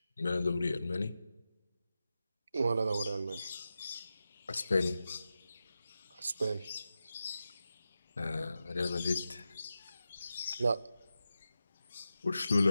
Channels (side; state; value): both; inverted; correlation -0.91